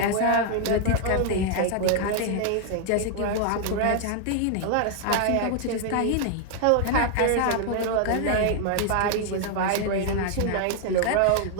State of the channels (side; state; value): both; different; correlation 0.00